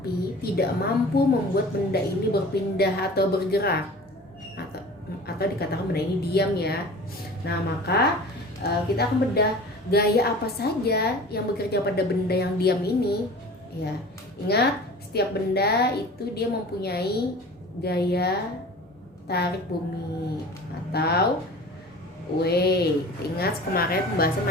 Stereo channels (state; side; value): normal; both; correlation 0.40